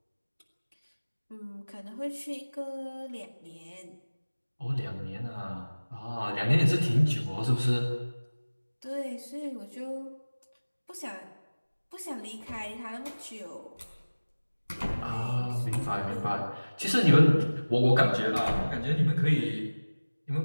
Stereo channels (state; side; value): inverted; both; correlation -1.00